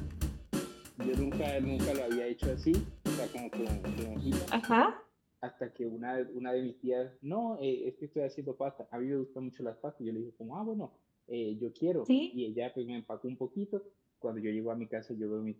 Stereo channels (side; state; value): both; identical; correlation 1.00